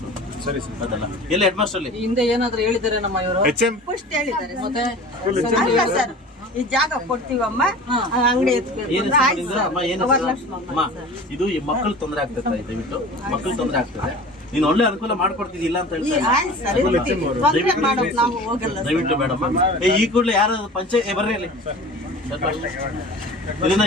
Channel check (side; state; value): both; normal; correlation 0.39